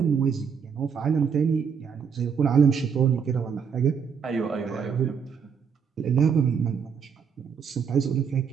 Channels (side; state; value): left; quieter; 6.7 dB